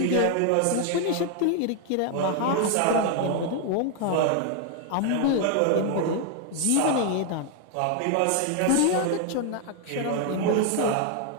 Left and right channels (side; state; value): both; different; correlation 0.00